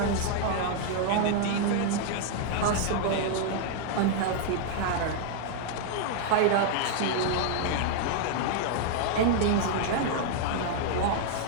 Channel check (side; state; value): both; different; correlation 0.00